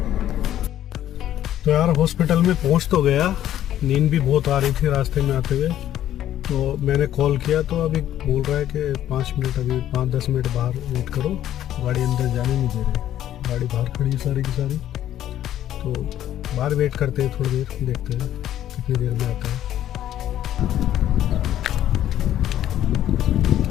तो यार हॉस्पिटल में पहुँच तो गया, नींद भी बहुत आ रही थी रास्ते में आते हुए। तो मैंने कॉल किया तो अभी बोल रहा है कि 5 मिनट, अभी 5-10 मिनट बाहर वेट करो, गाड़ी अंदर जाने नहीं दे रहे, गाड़ी बाहर खड़ी है सारी की सारी। तो बाहर वेट करते हैं थोड़ी देर, देखते हैं कितनी देर में आता है।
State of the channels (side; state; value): right; quieter; 12.0 dB